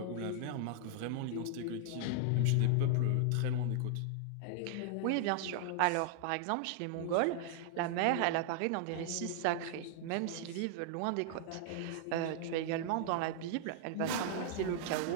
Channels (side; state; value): both; different; correlation -0.01